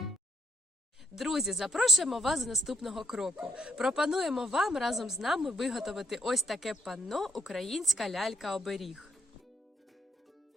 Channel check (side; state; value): both; normal; correlation 0.72